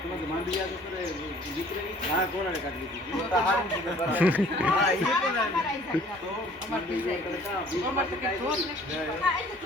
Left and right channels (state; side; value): normal; both; correlation 0.54